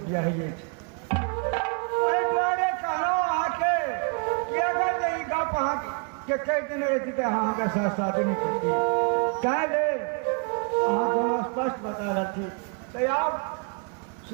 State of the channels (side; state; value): left; quieter; 37.8 dB